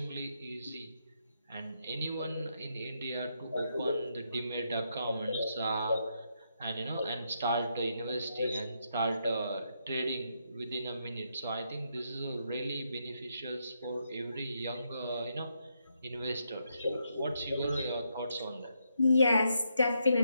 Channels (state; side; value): inverted; both; correlation -0.79